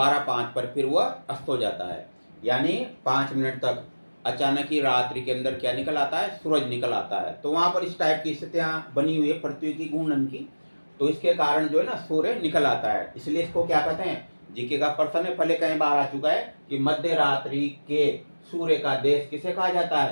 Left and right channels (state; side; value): inverted; both; correlation -1.00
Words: पर फिर वह अस्त हो जाता है, यानी 5 मिनट तक अचानक ही रात्रि के अंदर क्या निकल आता है? सूरज निकल आता है। तो वहाँ पर इस टाइप की स्थितियाँ बनी हुई है पृथ्वी की घूर्णन की, तो इसके कारण जो है ना सूर्य निकल आता है, इसलिए इसको क्या कहते हैं? जीके का प्रश्न है, पहले कई बार आ चुका है कि मध्य रात्रि के सूर्य का देश किसे कहा जाता